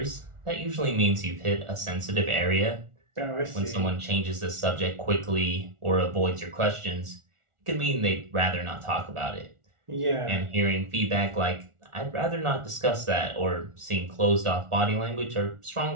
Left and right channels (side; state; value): left; late; 1.4 ms